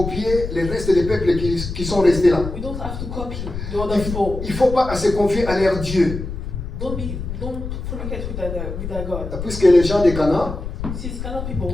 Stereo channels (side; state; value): left; noise; rumble, 7 dB below the sound